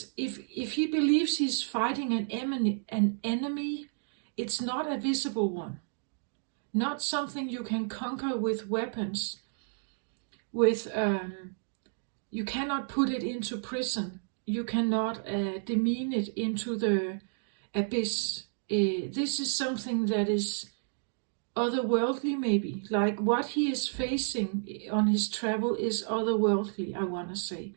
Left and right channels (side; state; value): left; silent; digital silence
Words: he believes he's fighting an enemy, it's not a visible one, not something you can conquer with weapons. You cannot put it into prison. You cannot demean it into the abyss. This is something that is otherworldly, maybe. Like what he is facing on his travel is otherworldly, I want to say.